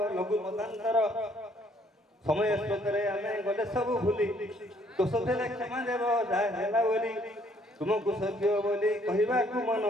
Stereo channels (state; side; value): normal; both; correlation 0.64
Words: ଲଘୁ ମତାନ୍ତର। ସମୟ ସ୍ରୋତରେ ଆମେ ଗଲେ ସବୁ ଭୁଲି, ଦୋଷ ଥିଲେ କ୍ଷମା ଦେବ ଯାହା ହେଲା ବୋଲି। ତୁମକୁ ସତ୍ୟ ବୋଲି କହିବାକୁ ମନ